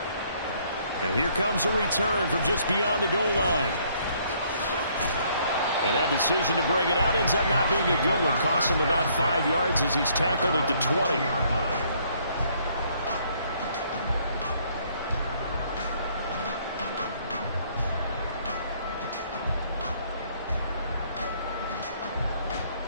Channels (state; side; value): inverted; both; correlation -0.65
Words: And here comes a return from just beyond the goal line. And that decision to bring it out ends up not being a good one. Costs him about 5 yards as he's tackled at the 20.